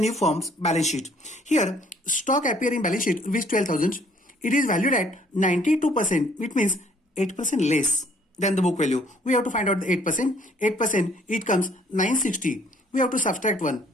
firm's balance sheet? Here stock appear in balance sheet rupees 12,000. It is valued at 92%, which means 8% less than the book value. We have to find out the 8%. 8%, it comes 960. We have to subtract 1.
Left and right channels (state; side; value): normal; both; correlation 0.61